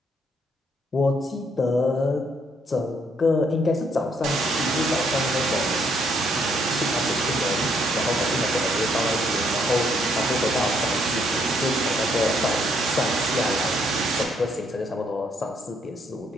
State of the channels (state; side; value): normal; both; correlation 0.70